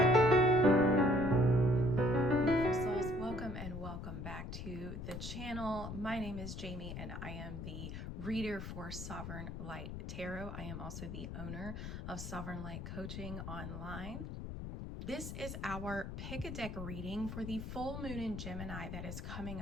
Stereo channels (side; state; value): left; noise; rumble, 7 dB below the sound